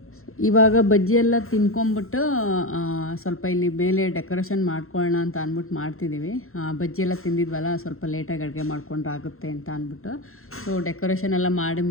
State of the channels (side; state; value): right; late; 0.62 ms